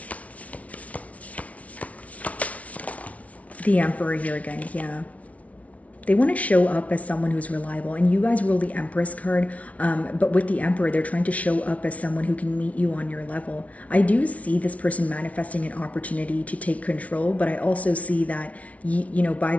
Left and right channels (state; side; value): late; right; 0.067 ms